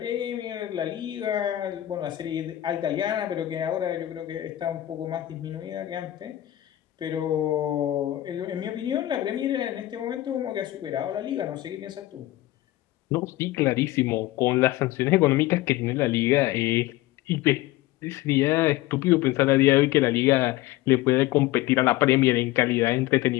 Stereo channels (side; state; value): right; quieter; 15.7 dB